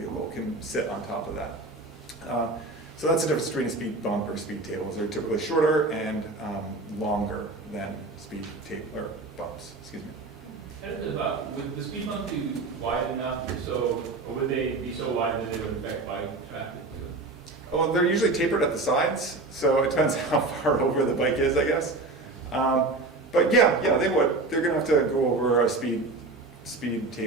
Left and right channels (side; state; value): left; quieter; 3.3 dB